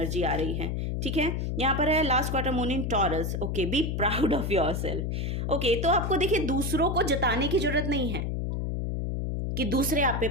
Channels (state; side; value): noise; left; hum, 1 dB below the sound